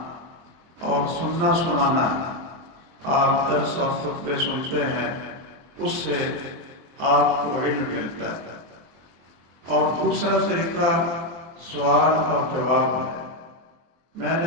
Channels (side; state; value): left; late; 23 ms